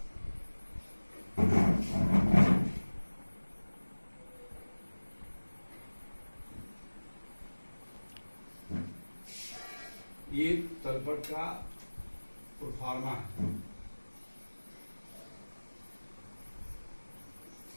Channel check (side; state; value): both; inverted; correlation -1.00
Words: ये तलपट का प्रोफार्मा है।